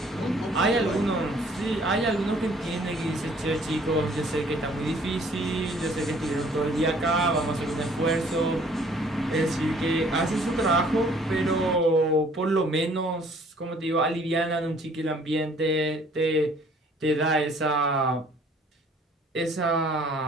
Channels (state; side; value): normal; both; correlation 0.57